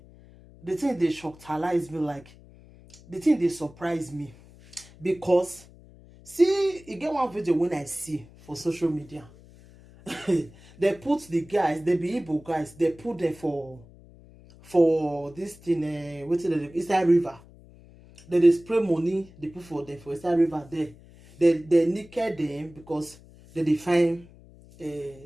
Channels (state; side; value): noise; left; hum, 23 dB below the sound